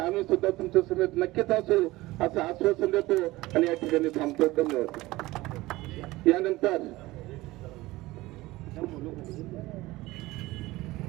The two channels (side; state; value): left; quieter; 19.0 dB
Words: सुद्धा तुमच्या समेत नक्कीच असू असं आश्वासन देतो आणि या ठिकाणी थांबतो. धन्यवाद.